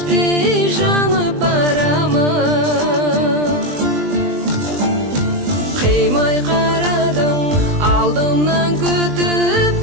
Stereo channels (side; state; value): left; late; 20 ms